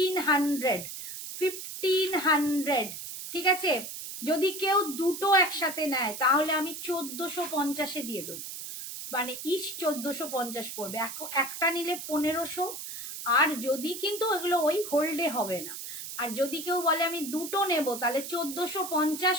1500। ঠিক আছে, যদি কেউ দুটো একসাথে নেয় তাহলে আমি 1450-এ দিয়ে দেবো, মানে ইচ 1450 পড়বে, একটা নিলে 1500। আর যদি কিন্তু এগুলো ওই হোল্ডে হবে না, আর যদি কেউ বলে আমি দুটো নেব তাহলে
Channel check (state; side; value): noise; right; hiss, 8 dB below the sound